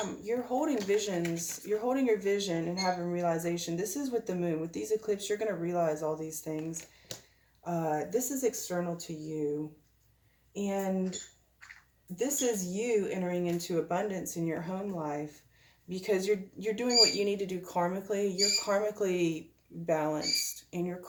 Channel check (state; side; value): identical; both; correlation 1.00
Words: you're holding visions. You're holding your vision and having realization. This is with the moon. With these eclipses, you're going to realize all these things. This is external to you. And this is you entering into abundance in your home life, because you're doing what you need to do karmically. You're karmically balanced, and you're